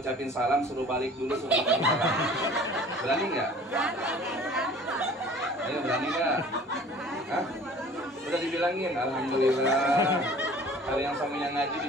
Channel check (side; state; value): both; normal; correlation 0.48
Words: salam, suruh balik dulu, suruh ngucapin salam? Berani nggak? Ayo, berani nggak? Hah? Udah dibilangin, alhamdulillah. Kalau yang suaminya ngaji